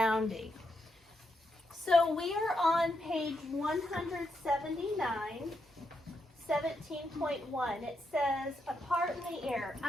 So we are on page 179, 17.1. It says, apart in the air.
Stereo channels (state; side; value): normal; both; correlation 0.82